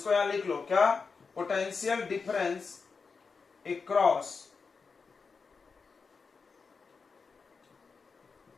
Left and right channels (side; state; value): right; quieter; 5.0 dB